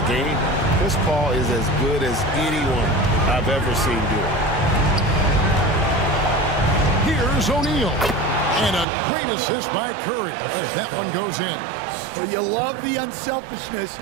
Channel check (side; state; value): left; drops out; at 8.8 s